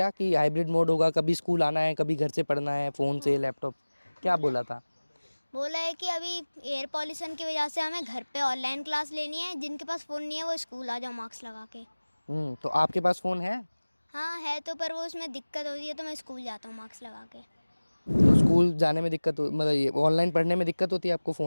कि हाइब्रिड मोड होगा, कभी स्कूल आना है, कभी घर से पढ़ना है, फ़ोन से, लैपटॉप, क्या बोला था? बोला है कि अभी एयर पॉल्यूशन की वजह से हमें घर पे ऑनलाइन क्लास लेनी है। जिनके पास फ़ोन नहीं है वो स्कूल आ जाओ मार्क्स लगा के। तो आपके पास फ़ोन है? हाँ है तो, पर वो उसमें दिक्कत होती है तो मैं स्कूल जाता हूँ मार्क्स लगा के। तो स्कूल जाने में दिक्कत मतलब ये ऑनलाइन पढ़ने में दिक्कत होती है आपको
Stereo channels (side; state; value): both; inverted; correlation -1.00